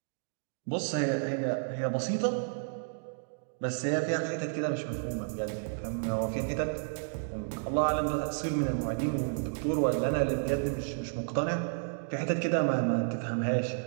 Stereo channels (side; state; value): left; silent; digital silence